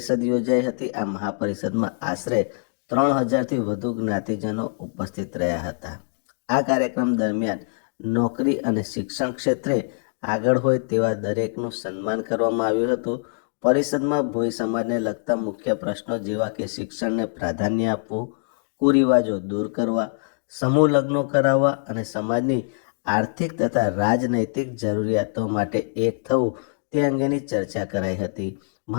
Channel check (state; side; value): silent; right; digital silence